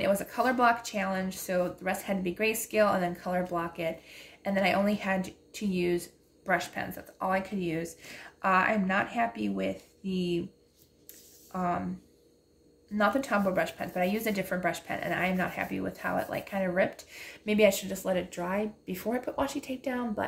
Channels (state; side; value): identical; both; correlation 1.00